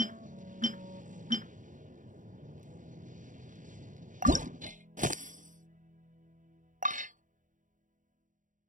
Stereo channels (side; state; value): left; late; 0.37 ms